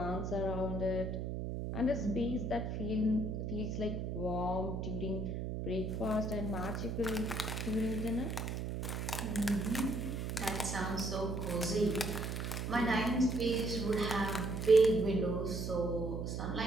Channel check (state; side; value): noise; right; hum, 3 dB below the sound